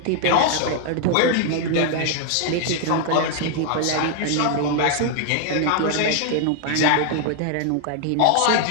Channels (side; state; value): both; different; correlation 0.00